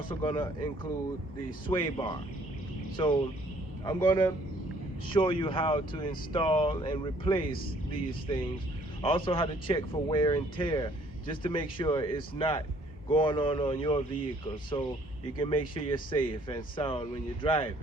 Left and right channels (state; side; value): normal; both; correlation 0.61